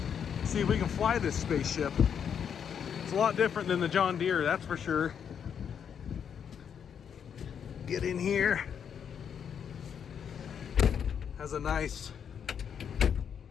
see if we can fly this spaceship. It's a lot different than the John Deere, that's for sure. Get in here. Has a nice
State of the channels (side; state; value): right; quieter; 7.8 dB